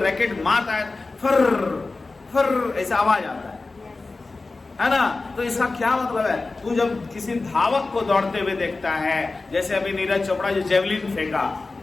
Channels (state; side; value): quieter; right; 3.6 dB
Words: मारता है, फर फर ऐसा आवाज आता है ना। तो इसका क्या मतलब है, तू जब किसी धावक को दौड़ते हुए देखता है, जैसे अभी नीरज चोपड़ा जो जेवलिन फेंका,